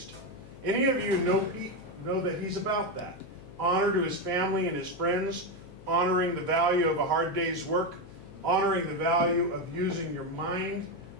Any of you know Pete know that he's about that. Honor to his family and his friends, honoring the value of a hard day's work, honoring the value of using your mind,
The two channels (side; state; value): left; noise; hum, 18 dB below the sound